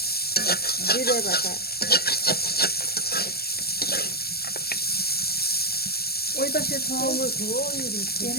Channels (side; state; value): right; late; 0.45 ms